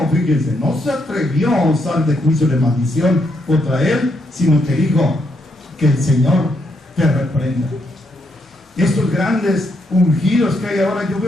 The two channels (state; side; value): normal; both; correlation 0.77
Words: fíjense, no se atrevió a usar de juicio de maldición contra él, sino que dijo, que el Señor te reprenda. Estos grandes ungidos que hay ahora, yo